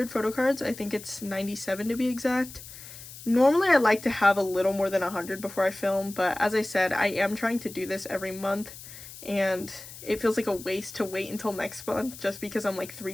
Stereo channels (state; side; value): noise; left; hiss, 15 dB below the sound